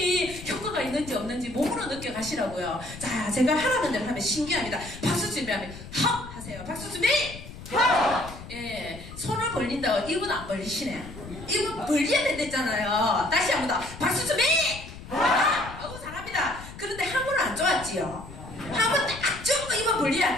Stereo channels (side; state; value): left; noise; rumble, 14 dB below the sound